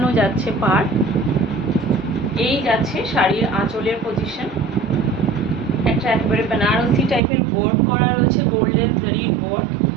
যাচ্ছে পার্ট। এই যাচ্ছে শাড়ির আঁচলের পজিশন, একটা একেবারে বেনারসি টাইপের ওয়ার্ক করা রয়েছে, গোল্ডেন জারির ওয়ার্ক,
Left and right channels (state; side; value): drops out; left; at 7.2 s